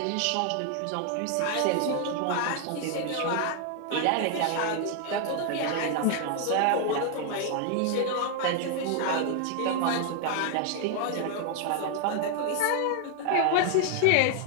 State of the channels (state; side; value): different; both; correlation 0.00